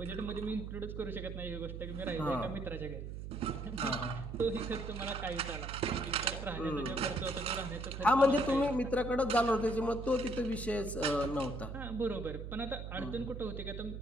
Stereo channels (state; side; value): noise; right; hum, 7 dB below the sound